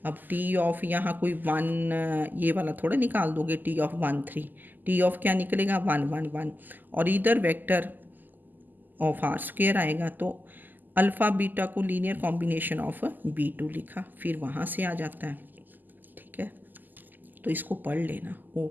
अब टी ऑफ यहाँ कोई 1 ये वाला थोड़ा निकाल दोगे, टी ऑफ 1 3, टी ऑफ क्या निकलेगा 1 1 1, और इधर वेक्टर ऑफ आर स्क्वायर आएगा, तो अल्फ़ा बीटा को लीनियर कॉम्बिनेशन ऑफ b2 लिखा, फिर वहाँ से आ जाता है, ठीक है। तो इसको पढ़ लेना।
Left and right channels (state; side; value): late; left; 0.087 ms